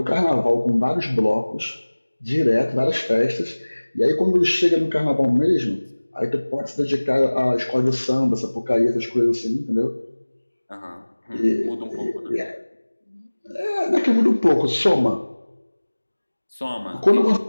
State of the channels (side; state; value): both; inverted; correlation -1.00